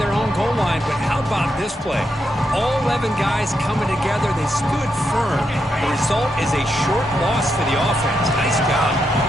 own goal line, but how about this play? All 11 guys coming together. They stood firm. The result is a short loss for the offense. Nice job.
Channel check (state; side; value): normal; both; correlation 0.83